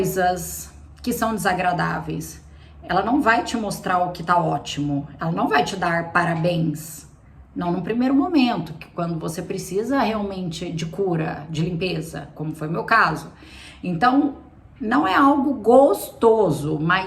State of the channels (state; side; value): identical; both; correlation 1.00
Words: que são desagradáveis. Ela não vai te mostrar o que tá ótimo. Ela não vai te dar parabéns. Não no primeiro momento, que quando você precisa realmente de cura, de limpeza, como foi o meu caso. Então, não é algo gostoso,